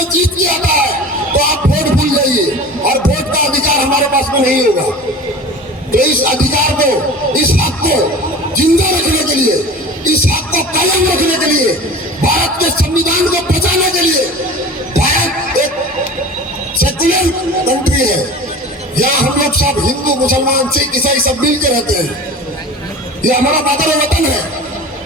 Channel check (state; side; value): normal; both; correlation 0.37